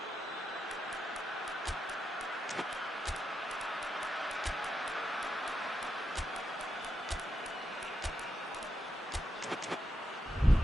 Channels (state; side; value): normal; both; correlation 0.85